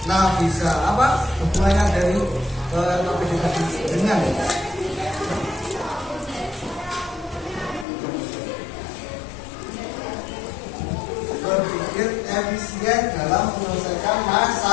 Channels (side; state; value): right; drops out; at 7.9 s